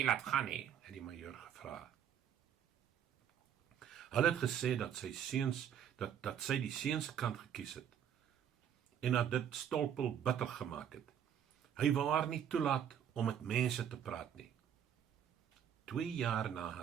laat gaan nie, het die majoor gevra. Hulle het gesê dat sy seuns, dat sy die seuns kant gekies het, en dat dit Stolpel bitter gemaak het. Hy wou haar nie toelaat om met mense te praat nie. 2 jaar na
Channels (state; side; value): quieter; left; 9.1 dB